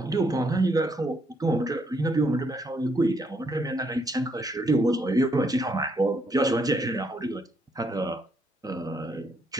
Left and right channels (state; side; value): normal; both; correlation 0.73